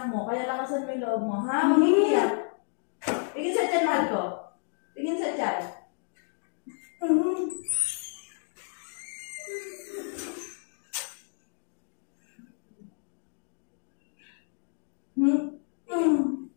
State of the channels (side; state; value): right; silent; 56 dB below the other